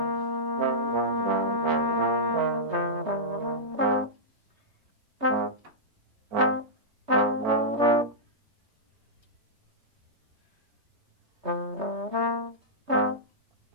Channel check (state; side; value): late; left; 3.2 ms